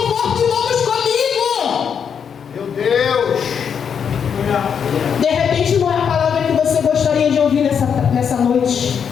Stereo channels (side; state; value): right; quieter; 7.3 dB